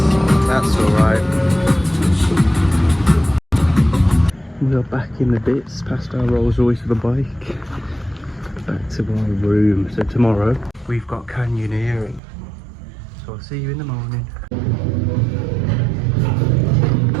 that's alright. We are back in the bits, past our Rolls Royce with a bike. Back to our room. So tomorrow we've got canyoneering. So I'll see you in the morning. Good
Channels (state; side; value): drops out; left; at 12.2 s